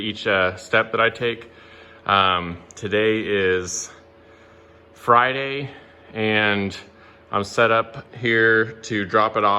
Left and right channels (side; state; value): both; identical; correlation 1.00